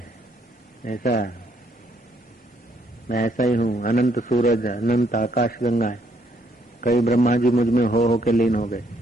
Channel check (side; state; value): both; normal; correlation 0.70